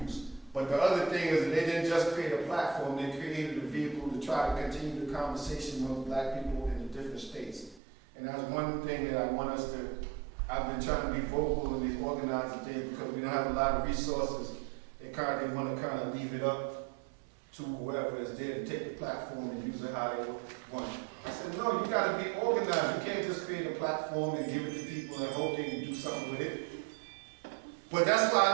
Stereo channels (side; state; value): left; drops out; at 7.8 s